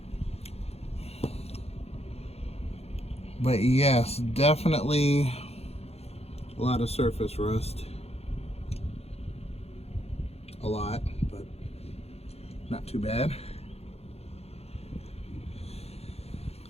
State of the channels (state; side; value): late; right; 0.30 ms